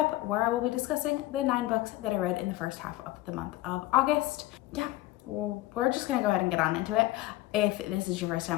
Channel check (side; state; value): right; quieter; 17.1 dB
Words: where I will be discussing the 9 books that I read in the first half of the month of August. Yeah, well, we're just gonna go ahead and get on into it. If this is your first